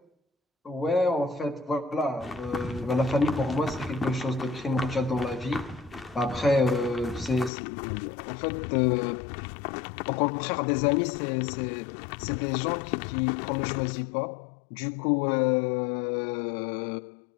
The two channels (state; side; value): drops out; right; at 7.5 s